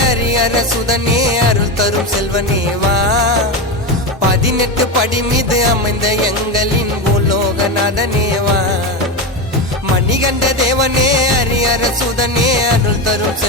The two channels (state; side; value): normal; both; correlation 0.16